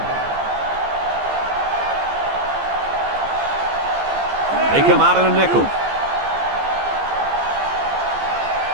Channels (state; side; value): late; left; 15 ms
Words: They come out in a nickel.